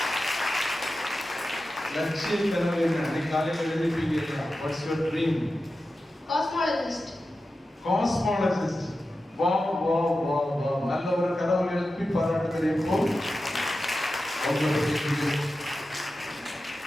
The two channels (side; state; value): both; normal; correlation 0.92